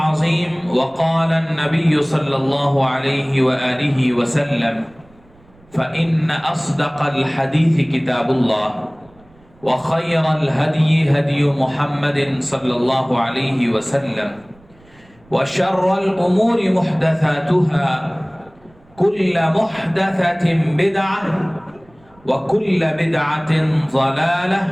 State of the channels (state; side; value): noise; right; rumble, 29 dB below the sound